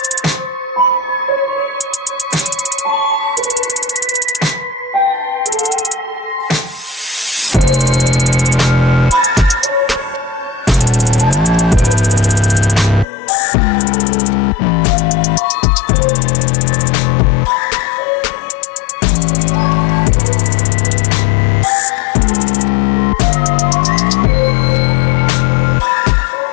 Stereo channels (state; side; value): drops out; right; at 13.1 s